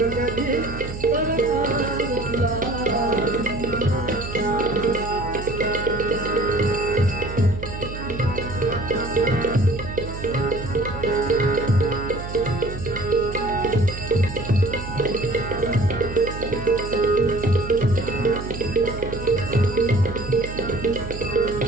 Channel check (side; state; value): right; noise; hum, 9 dB below the sound